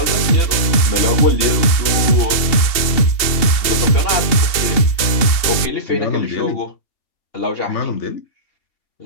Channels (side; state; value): right; late; 2.8 ms